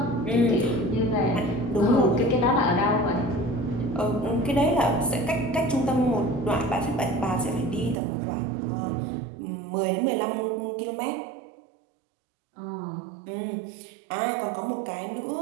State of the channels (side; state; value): left; drops out; at 8.0 s